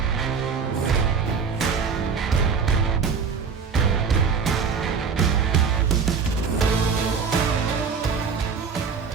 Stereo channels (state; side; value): quieter; left; 5.8 dB